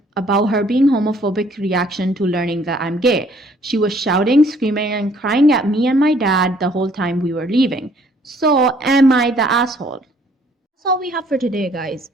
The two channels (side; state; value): both; normal; correlation 0.61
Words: about her being homophobic reaction to learning that I'm gay. She was shouting, screaming, and crying at me and my dad the whole time we were leaving. So, am I the asshole? That's all we have for today, guys.